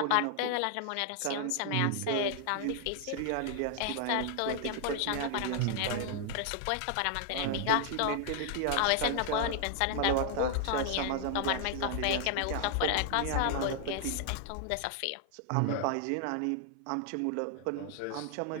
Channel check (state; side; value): different; both; correlation 0.00